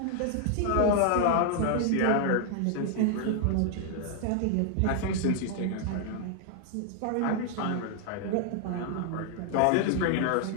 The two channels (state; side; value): different; both; correlation 0.00